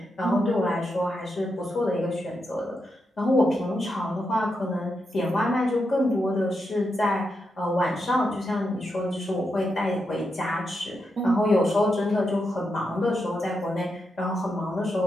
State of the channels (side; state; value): both; normal; correlation 0.85